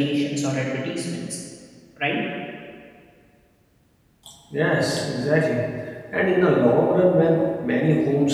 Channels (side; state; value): both; identical; correlation 1.00